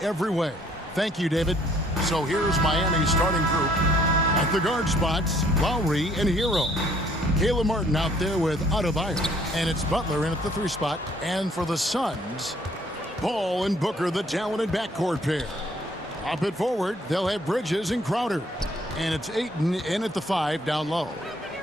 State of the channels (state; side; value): normal; both; correlation 0.62